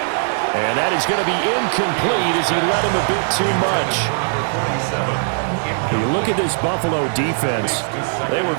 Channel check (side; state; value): left; silent; digital silence